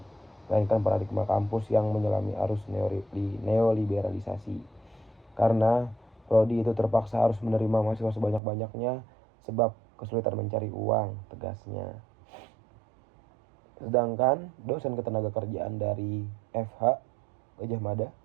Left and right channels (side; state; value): left; drops out; at 8.4 s